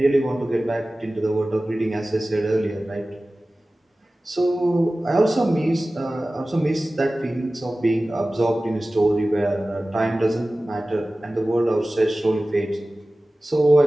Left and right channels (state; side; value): normal; both; correlation 0.97